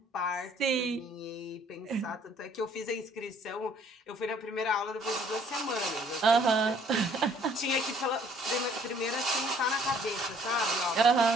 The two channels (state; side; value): normal; both; correlation 0.59